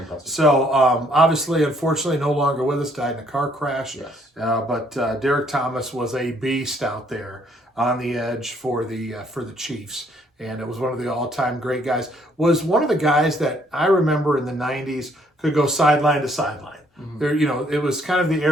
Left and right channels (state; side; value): normal; both; correlation 0.66